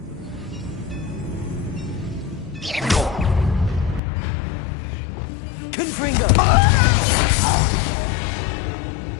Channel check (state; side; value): drops out; right; at 4.0 s